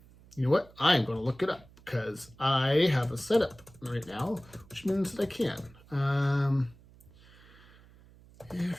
you know what? I'm going to look it up because I have a setup right now, which means that I can.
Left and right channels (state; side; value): noise; right; hum, 25 dB below the sound